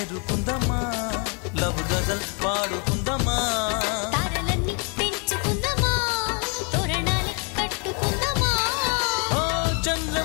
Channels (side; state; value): right; quieter; 35.6 dB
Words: లవ్ గజల్ పాడుకుందమ్మా తారలన్నీ పెంచుకుందమా తోరణాలు కట్టుకుందమా ఓ